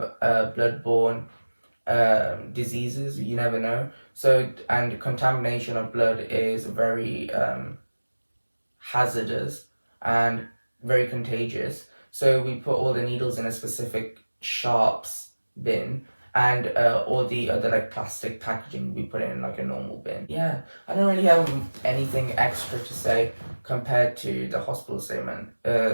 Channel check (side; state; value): both; inverted; correlation -1.00